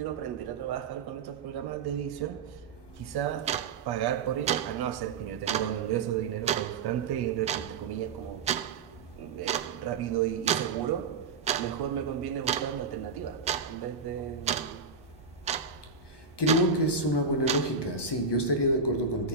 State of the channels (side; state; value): left; quieter; 4.8 dB